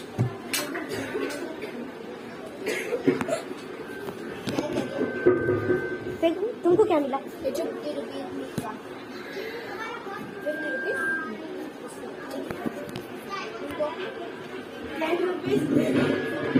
तुमको क्या मिला?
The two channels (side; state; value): both; identical; correlation 1.00